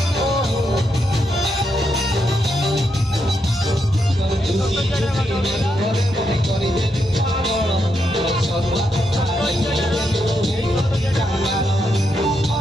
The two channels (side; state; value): both; normal; correlation 0.81